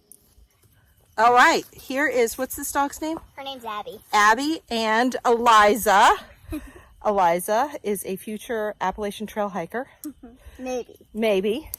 All right, here is, what's this dog's name? Her name's Abby. Abby and Eliza. Eliza is a future Appalachian trail hiker. Maybe.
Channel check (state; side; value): identical; both; correlation 1.00